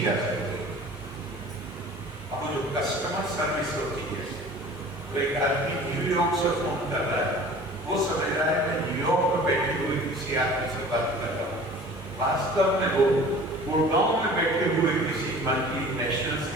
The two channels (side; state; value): both; normal; correlation 0.44